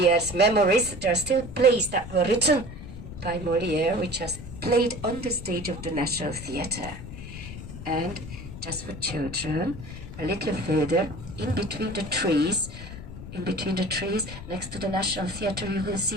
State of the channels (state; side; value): noise; left; rumble, 11 dB below the sound